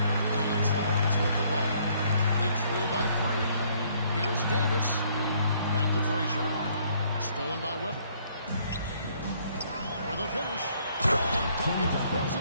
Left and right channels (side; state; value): both; inverted; correlation -0.65